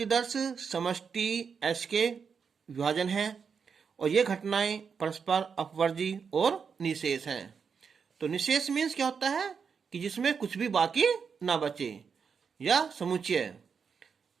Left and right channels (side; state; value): left; quieter; 6.2 dB